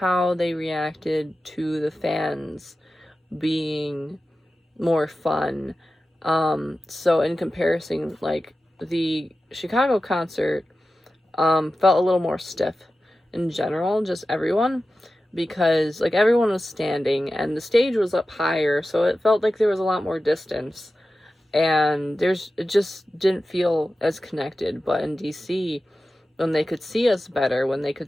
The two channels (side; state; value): both; normal; correlation 0.94